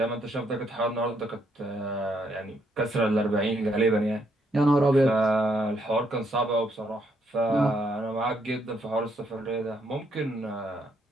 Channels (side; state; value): both; normal; correlation 0.74